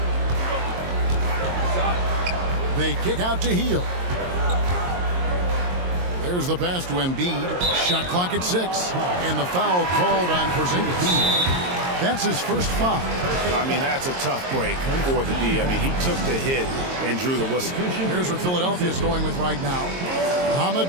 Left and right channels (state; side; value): late; left; 22 ms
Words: They kick out to Hield. There's the pass to Embiid. Shot clock at 6. And the foul called on Porzingis. That's his first foul. I mean, that's a tough break for the D. I mean, he took the hit and drew the whistle. Here's what Philadelphia's going with right now. Ahmed